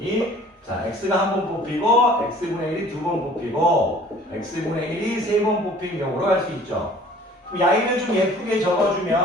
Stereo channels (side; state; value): both; normal; correlation 0.51